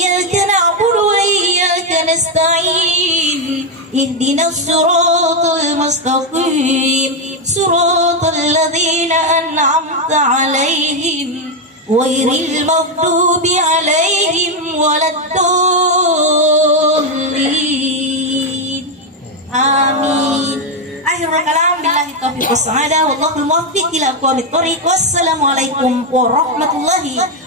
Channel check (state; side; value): normal; both; correlation 0.04